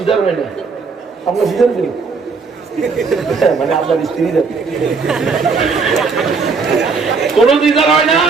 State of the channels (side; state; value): left; quieter; 4.8 dB